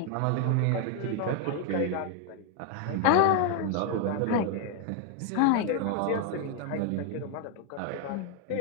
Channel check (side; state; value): both; different; correlation 0.01